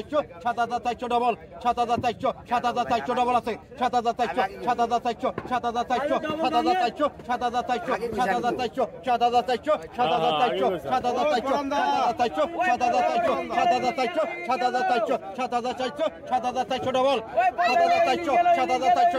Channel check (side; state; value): both; identical; correlation 1.00